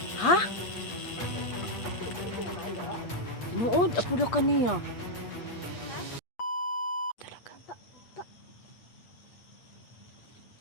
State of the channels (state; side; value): late; right; 8.4 ms